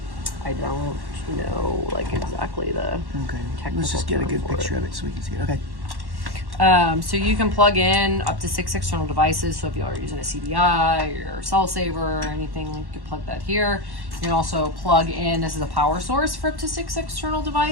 I don't know like exactly the technical. Let's just get a good picture of it so we can see it. Okay. So you can plug in up to 6 external devices. So if you are using a CDI or cell saver or anything, you can plug that here. You can also plug in, this is a power source for up to 6 external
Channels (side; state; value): left; late; 1.1 ms